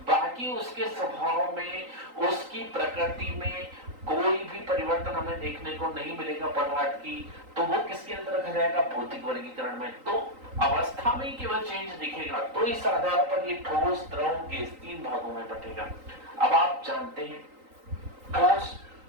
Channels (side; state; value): left; late; 3.9 ms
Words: बाकी उसके स्वभाव में, उसकी प्रकृति में कोई भी परिवर्तन हमें देखने को नहीं मिलेगा पदार्थ की, तो वो किसके अंदर रखा जाएगा? भौतिक वर्गीकरण में। तो अवस्था में केवल चेंज दिखेगा, तो इस आधार पर ये ठोस, द्रव, गैस 3 भागों में बटेगा। अब आप जानते हैं